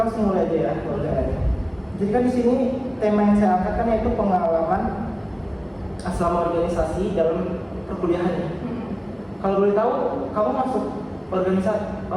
mulai aja ya wawancaranya. Jadi kan di sini tema yang saya angkat kan yaitu pengalaman selama organisasi dalam perkuliahan. Kalau boleh tahu, kamu masuk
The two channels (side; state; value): both; identical; correlation 1.00